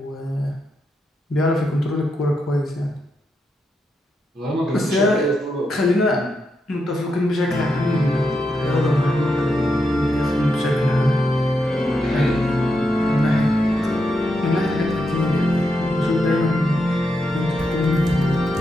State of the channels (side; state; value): both; normal; correlation 0.84